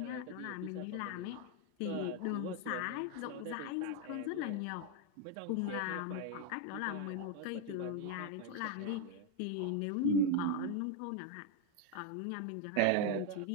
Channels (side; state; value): both; different; correlation 0.02